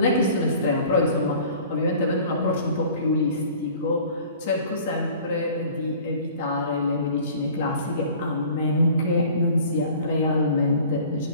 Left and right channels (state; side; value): inverted; both; correlation -0.47